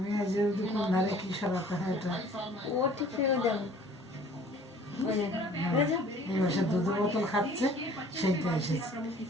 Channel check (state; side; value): normal; both; correlation 0.51